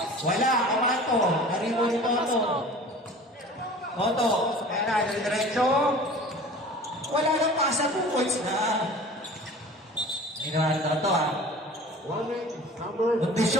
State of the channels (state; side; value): normal; both; correlation 0.42